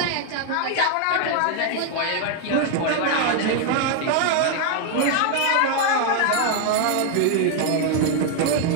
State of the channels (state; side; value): different; both; correlation 0.00